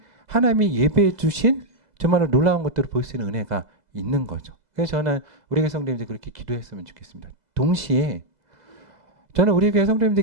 하나님이 예배해 주신 정말로 놀라운 것들을 볼 수 있는 은혜가 있는 거죠. 그래서 저는 우리 교회 성도님들 그렇게 기도했으면 좋겠습니다. 동시에 저는 우리 교회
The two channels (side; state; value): left; late; 2.0 ms